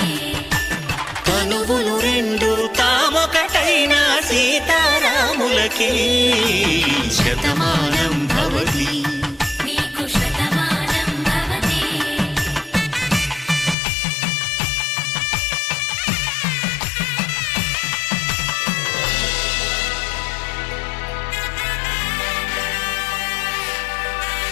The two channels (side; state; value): right; drops out; at 13.8 s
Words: తనువులు రెండు తామొకటైన సీతారాములకి శతమానం భవతి